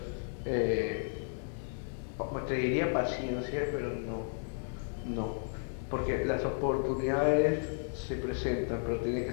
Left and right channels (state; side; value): silent; right; digital silence